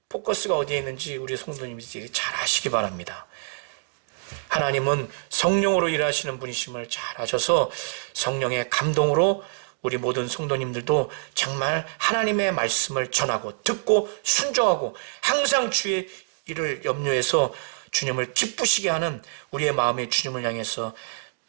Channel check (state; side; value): silent; left; digital silence